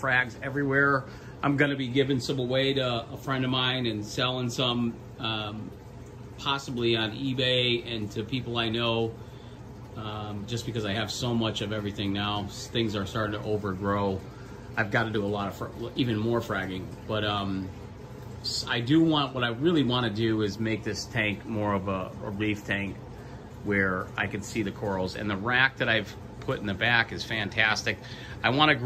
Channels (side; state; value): both; identical; correlation 1.00